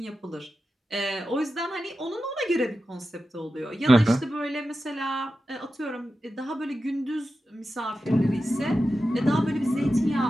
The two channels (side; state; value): both; normal; correlation 0.92